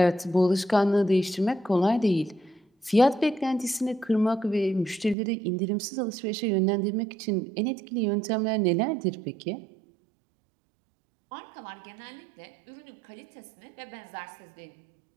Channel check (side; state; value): left; drops out; at 5.2 s